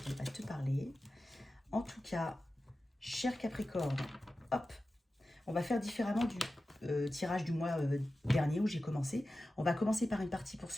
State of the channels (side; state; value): both; normal; correlation 0.94